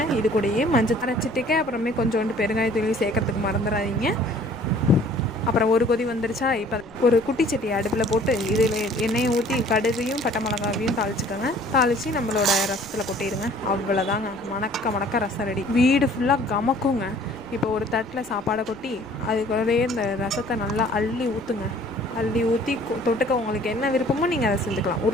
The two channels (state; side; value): noise; left; rumble, 25 dB below the sound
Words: இது கூடயே மஞ்சள் அரைச்சிட்டுக்க அப்புறமே கொஞ்சோண்டு பெருங்காயத்தூளையும் சேர்க்கறதுக்கு மறந்துடாதீங்க. அப்புறம் ஒரு கொதி வந்துருச்சா, இப்போ ஒரு குட்டி சட்டி அடுப்பில் போட்டு இதில் எண்ணெயை ஊற்றி கடுகையும் பட்டை மிளகாவையும் தாளிச்சுக்கோங்க. தாளித்து நம்மளோட ரசத்தில் கொட்டிடுங்க. அவ்வளோதாங்க, மணக்க ரசம் ரெடி. வீடு ஃபுல்லாக கமக்குங்க. இப்போ ஒரு தட்டில் சாப்பாடை கொட்டி அதுக்குள்ளே இந்த ரசத்தை நல்லா அள்ளி ஊற்றுங்க. அள்ளி ஊற்றி தொட்டுக்க உங்களுக்கு என்ன விருப்பமோ நீங்கள் அதை செஞ்சுக்கலாம்.